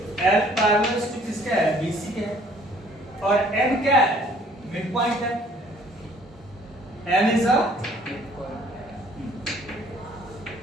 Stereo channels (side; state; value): both; normal; correlation 0.57